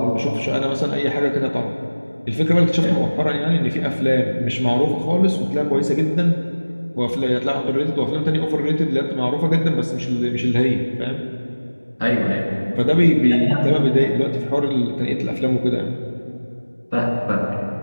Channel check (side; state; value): both; inverted; correlation -1.00